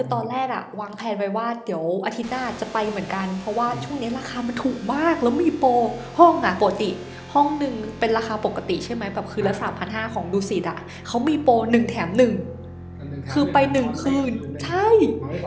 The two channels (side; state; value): both; identical; correlation 1.00